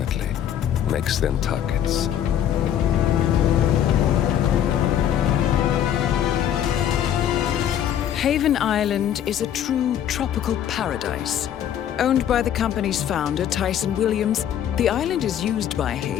makes them targets. Haven Island is a true tropical paradise. Owned by the company's founder, Tyson Williams, the island is used by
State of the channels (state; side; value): quieter; right; 10.1 dB